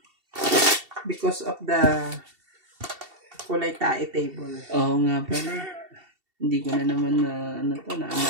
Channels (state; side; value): late; left; 2.7 ms